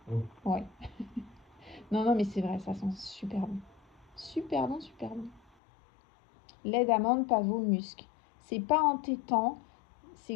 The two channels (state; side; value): drops out; right; at 5.4 s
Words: Oui. Ouais. Non, non, mais c'est vrai, ça sent super bon. Super bon, super bon. Lait d'amande, pavot, musc. C'est pas entêtant,